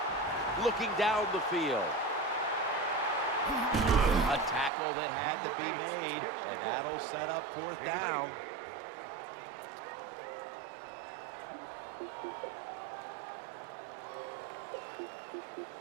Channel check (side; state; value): left; drops out; at 4.7 s